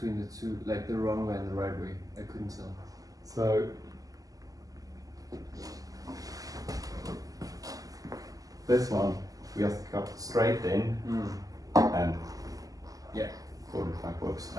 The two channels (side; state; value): left; late; 0.17 ms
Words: the two, like the wrong way and the right way? I couldn't tell. So this one we just cut straight in and fold it backwards,